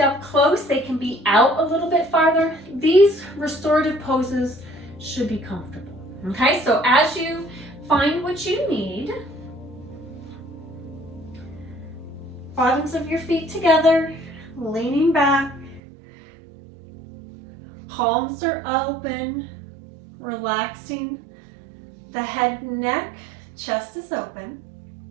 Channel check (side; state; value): left; drops out; at 15.8 s